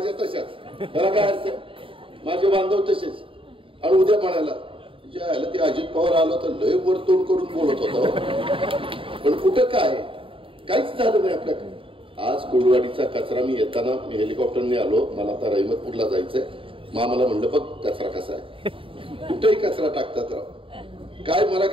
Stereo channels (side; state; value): left; late; 0.26 ms